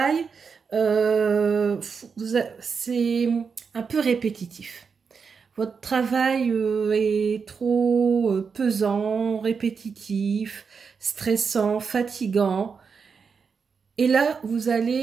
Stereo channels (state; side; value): quieter; left; 5.7 dB